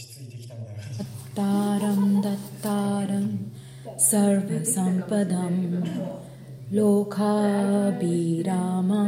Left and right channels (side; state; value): both; identical; correlation 1.00